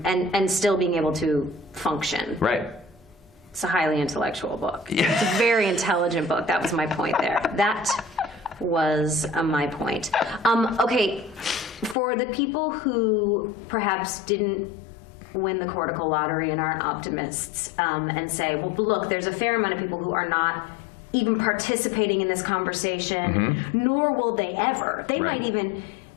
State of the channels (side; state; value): right; drops out; at 12.0 s